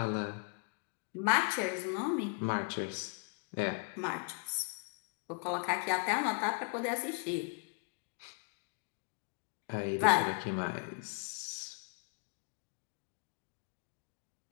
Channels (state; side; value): quieter; right; 38.9 dB